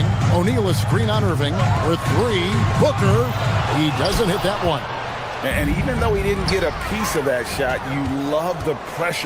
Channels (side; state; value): both; identical; correlation 1.00